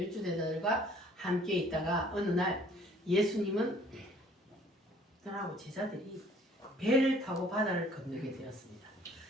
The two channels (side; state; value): both; normal; correlation 0.57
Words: 주제자들과 함께 있다가 어느 날 예수님은 들하고 제자들이 배를 타고 바다를 건너게 되었습니다.